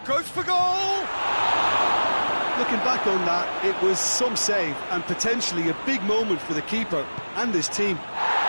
Goes for goal! Looking back on that, it was some save and potentially a big moment for the keeper and his team. Well,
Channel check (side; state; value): both; inverted; correlation -1.00